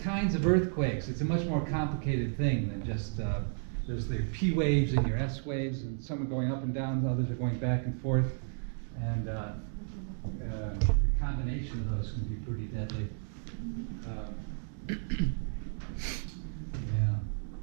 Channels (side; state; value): left; silent; digital silence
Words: kinds of earthquakes. It's a much more complicated thing than just there's the P waves and your S waves, and some are going up and down, others are going back and forth, and the combination of those can be pretty deadly. Yeah.